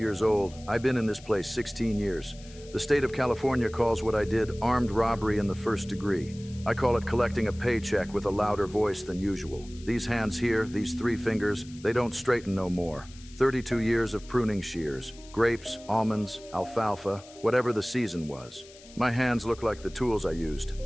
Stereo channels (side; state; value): left; noise; hiss, 21 dB below the sound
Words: old. I've been in this place 16 years. The state of California calls what I did armed robbery in the first degree. I call it collecting a paycheck with a louder voice than usual. These hands here, these 3 fingers, they don't straighten no more. 32 years of pruning shears, grapes, almonds, alfalfa, whatever the season was. My hands look like the tools I used,